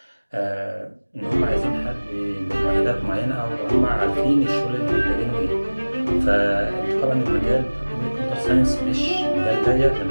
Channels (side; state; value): both; inverted; correlation -1.00